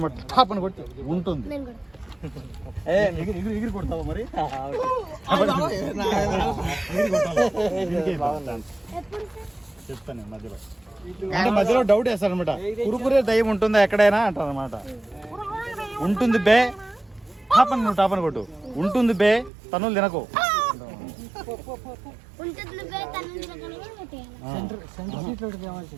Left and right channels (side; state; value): left; drops out; at 19.5 s